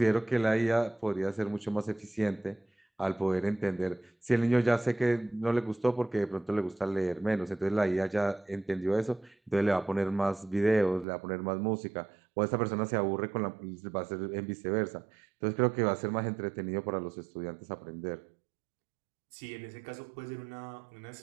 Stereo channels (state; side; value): drops out; left; at 11.1 s